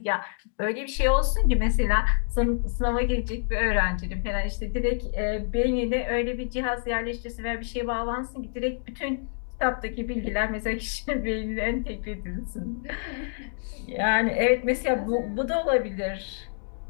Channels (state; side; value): silent; right; digital silence